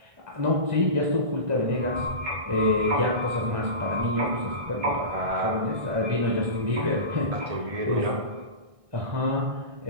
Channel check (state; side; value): late; left; 1.6 ms